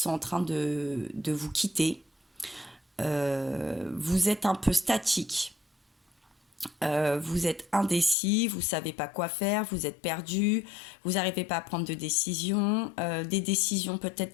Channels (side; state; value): right; drops out; at 8.2 s